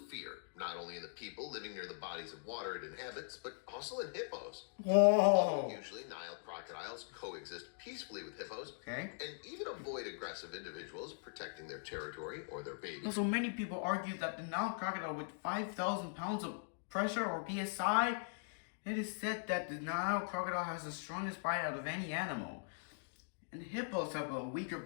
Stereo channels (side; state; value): right; silent; digital silence